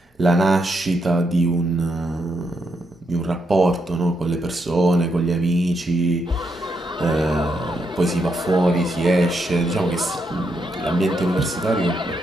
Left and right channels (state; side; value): normal; both; correlation 0.80